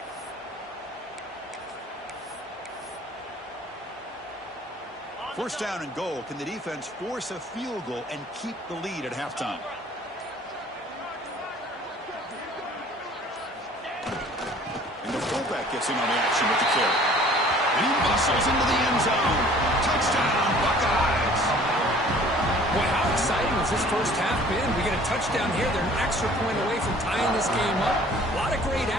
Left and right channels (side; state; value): both; normal; correlation 0.52